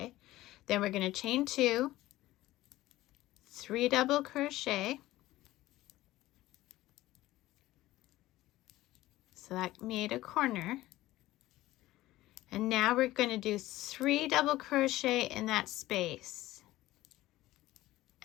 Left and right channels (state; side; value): quieter; right; 16.6 dB